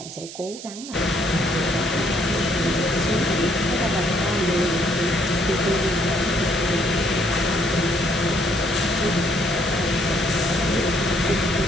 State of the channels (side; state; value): right; noise; hiss, 13 dB below the sound